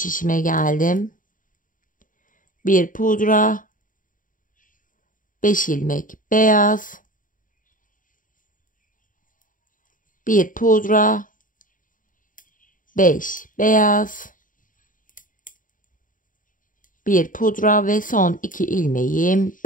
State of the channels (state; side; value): late; right; 0.39 ms